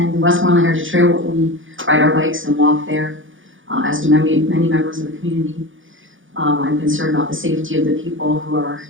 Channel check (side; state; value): left; late; 0.57 ms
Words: Westmoreland Heritage Trail, we ride our bikes and walk there, as do many members of the community. I'm concerned about the safety of the people who are